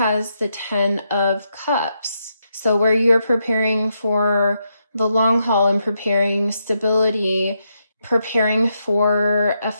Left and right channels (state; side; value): inverted; both; correlation -0.81